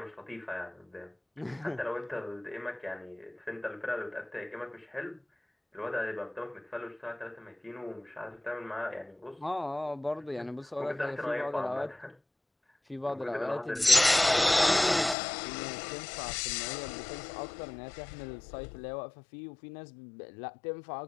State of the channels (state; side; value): drops out; right; at 15.2 s